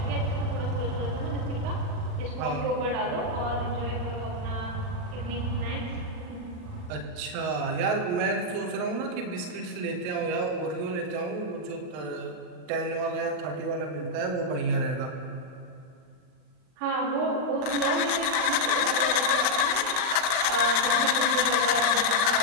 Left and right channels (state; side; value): late; left; 38 ms